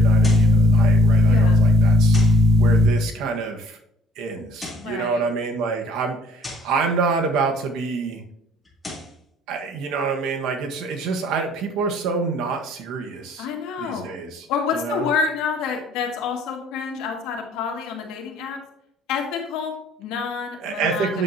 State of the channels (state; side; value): normal; both; correlation 0.60